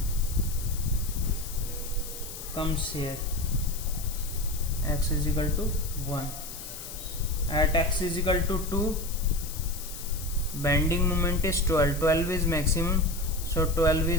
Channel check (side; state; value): left; noise; hiss, 11 dB below the sound